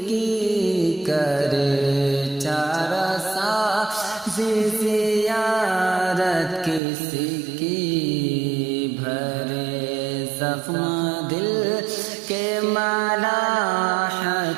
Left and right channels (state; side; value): drops out; left; at 6.8 s